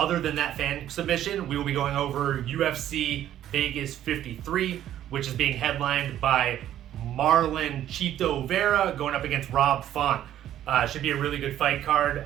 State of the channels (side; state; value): left; quieter; 11.8 dB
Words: than that fan submission, we will be going over UFC Vegas 53, which is being headlined by Marlon Chito Vera going up against Rob Font. Should be a really good fight card.